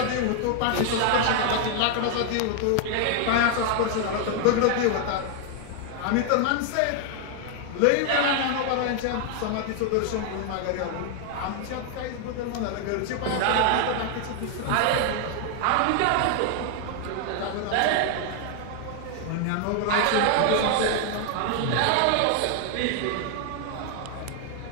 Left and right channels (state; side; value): different; both; correlation 0.00